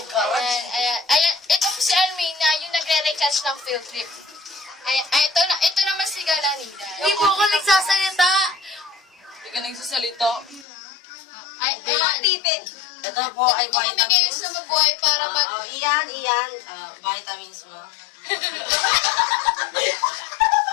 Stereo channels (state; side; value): drops out; right; at 10.7 s